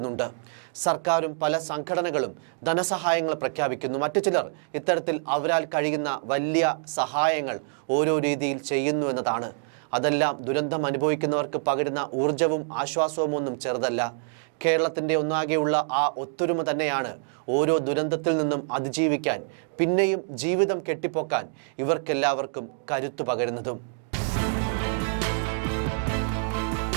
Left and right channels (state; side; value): silent; left; digital silence